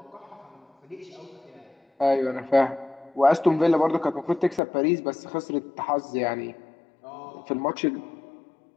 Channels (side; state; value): right; drops out; at 4.6 s